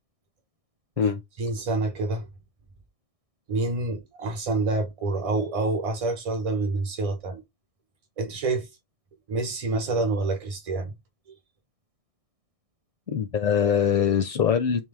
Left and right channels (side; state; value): left; late; 1.6 ms